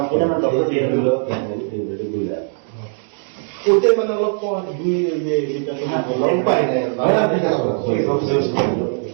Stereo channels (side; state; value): left; silent; 65 dB below the other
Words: ওইটাই মানে অলপ যেটা তোমার পাই না